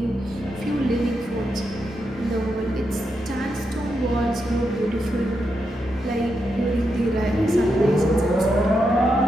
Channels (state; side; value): normal; both; correlation 0.84